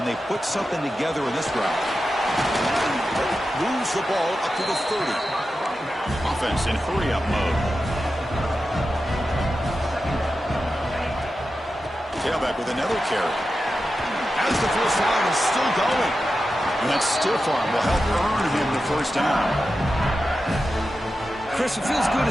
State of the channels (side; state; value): both; normal; correlation 0.91